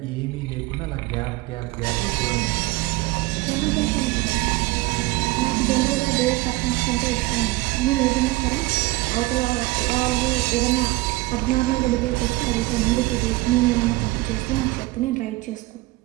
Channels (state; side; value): quieter; left; 20.7 dB